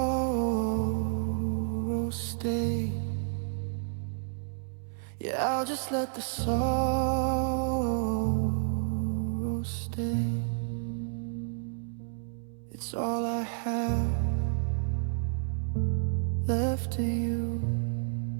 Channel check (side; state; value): left; silent; 57 dB below the other